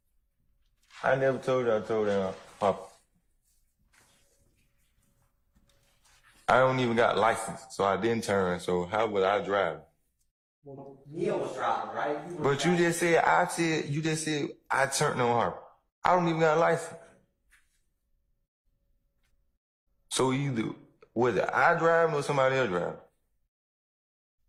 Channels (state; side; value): identical; both; correlation 1.00